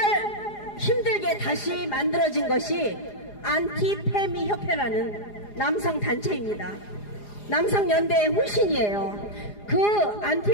힘들게 다시 만들어진 것이 안티페미 협회라는 남성단체입니다. 남성연대의 후신이에요. 그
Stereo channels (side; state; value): right; late; 4.9 ms